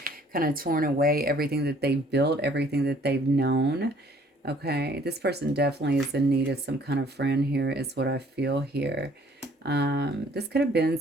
kind of torn away, everything that they've built, everything that they've known. Okay, this person definitely is in need of some kind of friend here, is what I feel here. This could have been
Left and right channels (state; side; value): normal; both; correlation 0.59